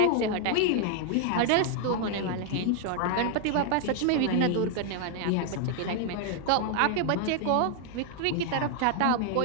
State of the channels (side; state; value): both; different; correlation 0.00